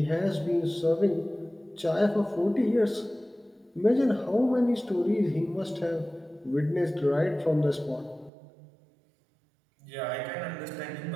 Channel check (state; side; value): drops out; left; at 8.3 s